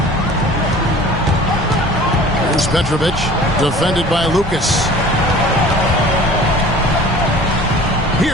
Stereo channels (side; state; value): both; normal; correlation 0.45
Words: Here's Petrovic, defended by Lucas.